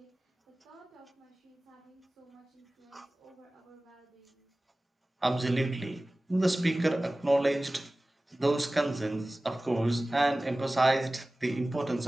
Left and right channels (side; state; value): both; normal; correlation 0.97